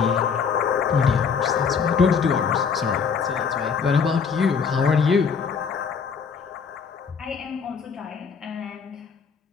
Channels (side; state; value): right; quieter; 6.0 dB